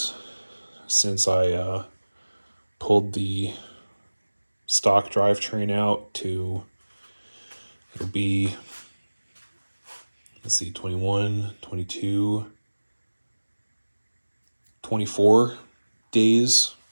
since I pulled the stock drivetrain out to, it'll be, let's see, 21, 22, 24 days.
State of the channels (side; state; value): both; inverted; correlation -1.00